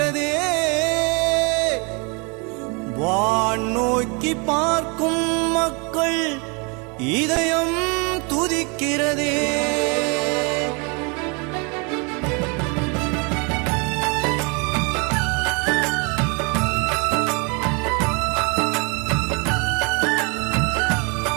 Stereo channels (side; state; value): left; quieter; 32.0 dB